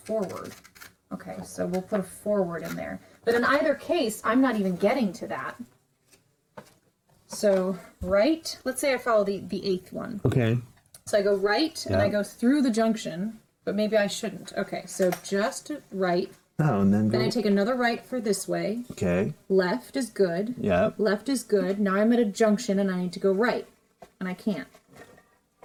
Okay, so we'll put a forward in there. But in either case, I'm not even getting to that. So right, let's say I follow the 8th one. Okay. So I go right, and Yeah. I go through the junction, but maybe I shouldn't. Okay, so just right. Oh, and then go. Then I take another right for this way. Okay. Left is good. Yep. Left is good. Now I'm at a junction, and I need to go right. And I can't.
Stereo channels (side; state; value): both; identical; correlation 1.00